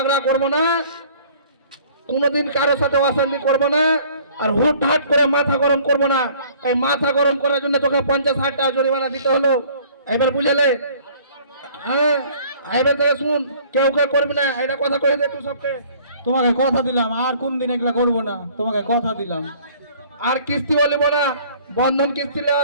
করব না, কোনোদিন কারোর সাথে অশান্তি করব না, আর হুটহাট করে মাথা গরম করব না। এই মাথা গরম করার জন্য তোকে 50,000 টাকা জরিমানা দিতে হলো। এবার বুঝলে? হ্যাঁ, এবার থেকে শুন, কেউ করবি না, এটা কথা কয়ে দে তুই সবকে। তোমাকে কথা দিলাম আর কোন দিন এগুলা করবো না, তোমাকে কথা দিলাম। আর কিস্তি বলিব না, বন্ধন কিস্তি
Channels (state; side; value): inverted; both; correlation -0.54